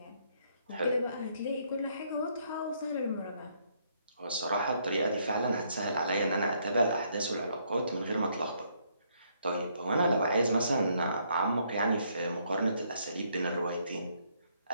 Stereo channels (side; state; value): both; inverted; correlation -0.70